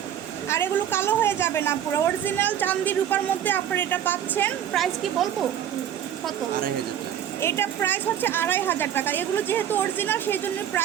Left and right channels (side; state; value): left; quieter; 10.1 dB